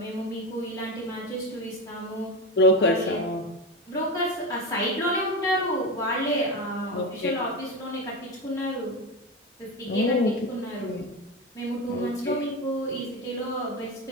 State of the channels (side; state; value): both; normal; correlation 0.19